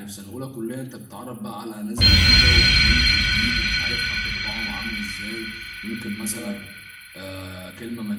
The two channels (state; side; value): identical; both; correlation 1.00